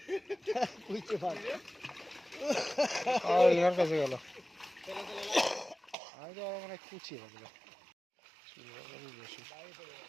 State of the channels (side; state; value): left; drops out; at 6.0 s